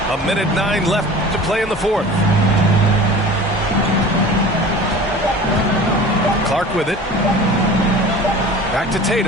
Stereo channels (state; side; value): normal; both; correlation 0.40